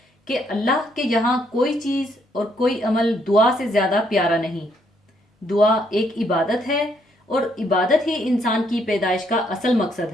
कि अल्लाह के यहाँ कोई चीज़ और कोई अमल दुआ से ज़्यादा प्यारा नहीं। दुआ एक इबादत है और इबादत ही इंसान की पैदाइश का असल मकसद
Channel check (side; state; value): both; normal; correlation 0.71